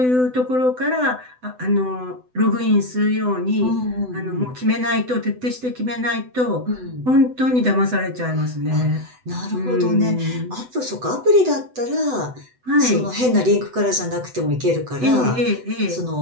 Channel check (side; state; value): left; late; 7.9 ms